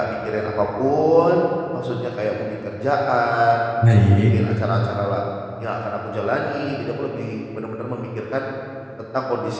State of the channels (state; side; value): identical; both; correlation 1.00